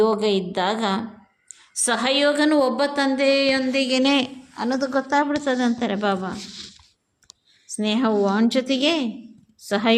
ಇದ್ದಾಗ ಸಹಯೋಗನೂ ಒಬ್ಬ ತಂದೆಯೊಂದಿಗೇ ಅನ್ನೋದು ಗೊತ್ತಾಗ್ಬಿಡ್ತದೆ ಅಂತಾರೆ ಬಾಬಾ. ಸ್ನೇಹವು ಅವನ ಜೊತೆಗೆ,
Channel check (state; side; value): identical; both; correlation 1.00